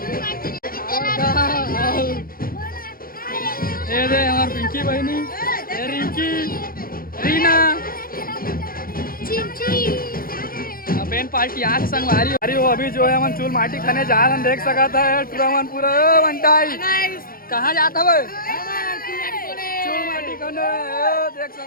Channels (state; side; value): late; right; 0.42 ms